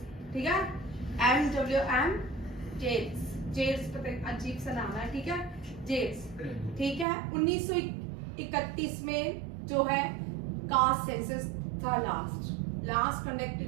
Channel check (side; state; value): left; drops out; at 7.1 s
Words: ठीक है। MWM जेट्स अजीब सा नाम है, ठीक है, जेट्स, ठीक है। 1931 में जो है कास्ट सेंसस था, last